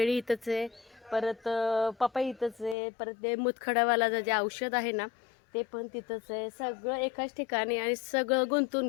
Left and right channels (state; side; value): drops out; right; at 2.8 s